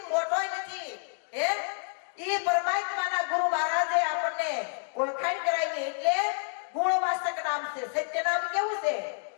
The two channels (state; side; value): silent; right; digital silence